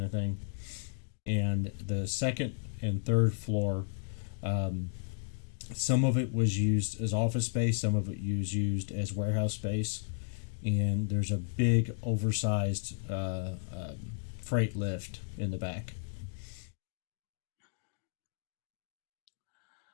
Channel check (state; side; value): silent; right; digital silence